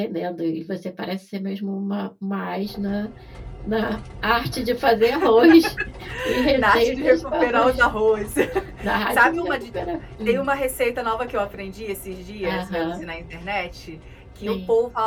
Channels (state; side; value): identical; both; correlation 1.00